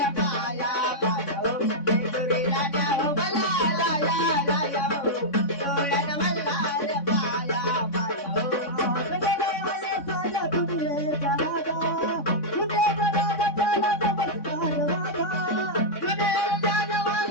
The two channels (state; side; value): late; right; 3.6 ms